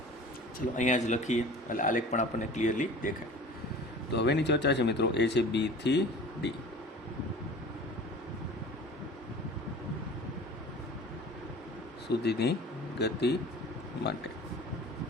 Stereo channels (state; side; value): normal; both; correlation 0.42